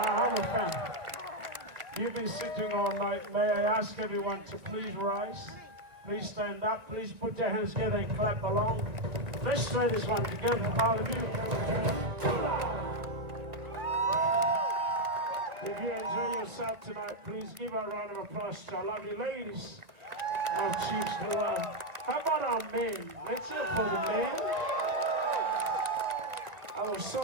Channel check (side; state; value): left; late; 2.2 ms